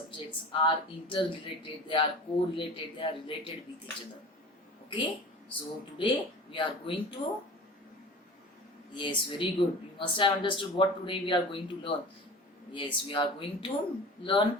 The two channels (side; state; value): both; normal; correlation 0.37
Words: are interrelated, they are correlated, they are related with each other. Okay, so today we are going to, yes, very good, you must have understood what today we are going to learn. Yes, we are going to